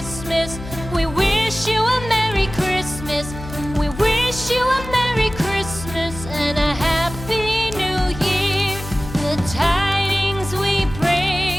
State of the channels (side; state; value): left; noise; hum, 11 dB below the sound